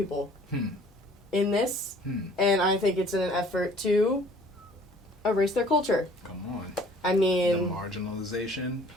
in this. And I think it's in an effort to erase their culture. Come on. I mean, the marginalization,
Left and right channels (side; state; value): both; normal; correlation 0.54